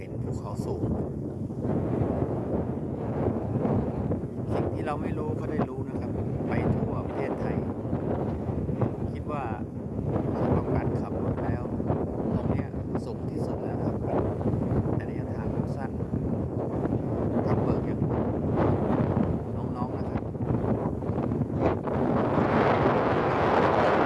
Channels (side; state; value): both; identical; correlation 1.00